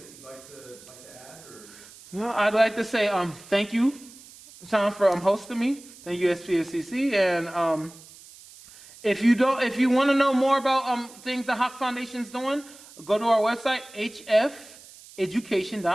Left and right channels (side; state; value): right; noise; hiss, 21 dB below the sound